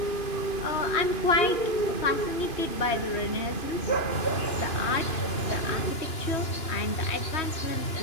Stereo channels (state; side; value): late; right; 2.9 ms